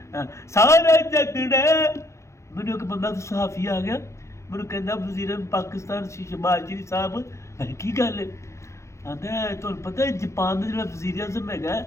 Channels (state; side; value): late; right; 0.14 ms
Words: सारे झगड़े मैनू एक बंदा सहाफ़ी आ गया मैनू कहना वज़ीर पाकिस्तान शहबाज शरीफ साहब की गल है आंदा तुहानूं पता है जापान का जो वज़ीर आज़म है